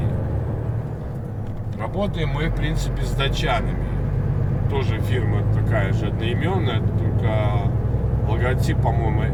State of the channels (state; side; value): identical; both; correlation 1.00